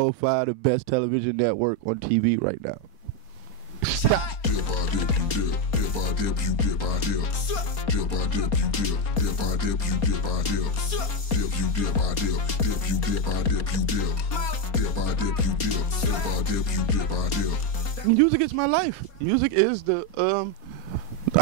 the best television network on TV right now. Stop. Music is my life. Music is the,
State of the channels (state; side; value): late; right; 4.3 ms